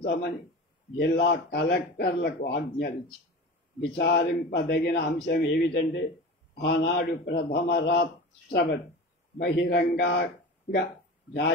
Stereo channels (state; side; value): normal; both; correlation 0.32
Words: జిల్లా కలెక్టర్లకు ఆజ్ఞలించి విచారింపదగిన అంశం ఏమిటంటే ఆనాడు ప్రథమ రాష్ట్రపతి బహిరంగంగా